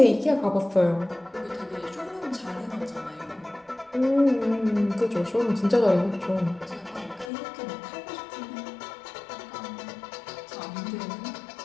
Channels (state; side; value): drops out; right; at 7.3 s